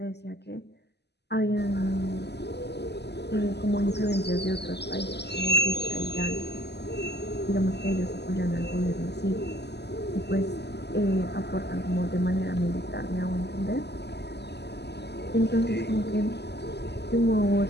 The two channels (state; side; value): late; right; 0.49 ms